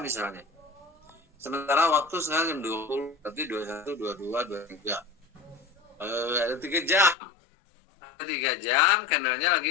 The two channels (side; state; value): right; drops out; at 7.2 s